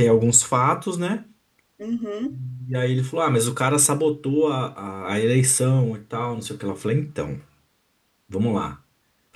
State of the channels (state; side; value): identical; both; correlation 1.00